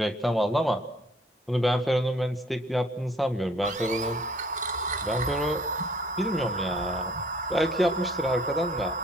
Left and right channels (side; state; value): both; normal; correlation 0.59